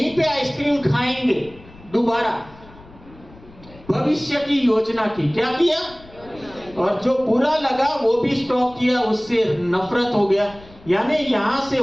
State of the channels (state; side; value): noise; left; rumble, 22 dB below the sound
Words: पे आइसक्रीम खाएंगे दोबारा। भविष्य की योजना की, क्या किया? और जो बुरा लगा वो भी स्टॉप किया, उससे नफरत हो गया। यानी यहां से